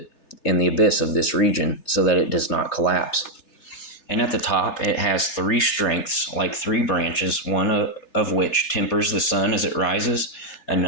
this region, so that it does not collapse. And at the top it has 3 strengths, like 3 branches, one of which tempers the sun as it rises,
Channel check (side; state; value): right; late; 3.3 ms